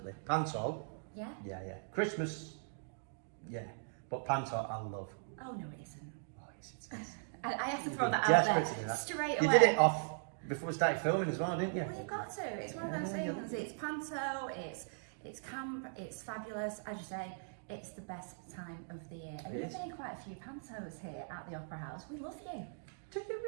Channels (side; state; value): left; silent; digital silence